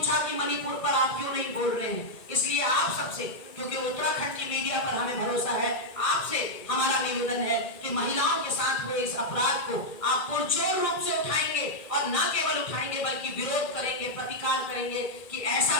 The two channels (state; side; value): late; right; 2.1 ms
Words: कि मणिपुर पर आप क्यों नहीं बोल रहे हैं। इसलिए आप सबसे, क्योंकि उत्तराखंड की मीडिया पर हमें भरोसा है, आपसे हमारा निवेदन है कि महिलाओं के साथ हुए इस अपराध को आप पुरजोर रूप से उठाएंगे, और न केवल उठाएंगे बल्कि विरोध करेंगे, प्रतिकार करेंगे कि ऐसा